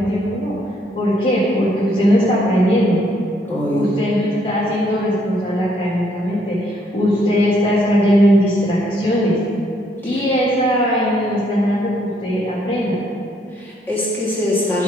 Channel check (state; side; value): normal; both; correlation 0.70